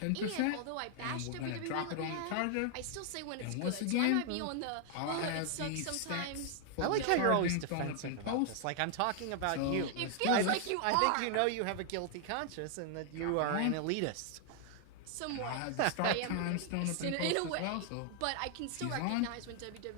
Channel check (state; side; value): different; both; correlation 0.00